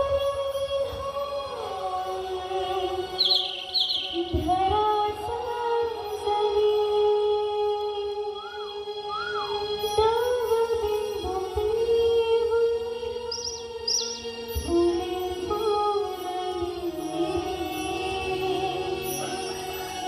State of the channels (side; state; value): both; identical; correlation 1.00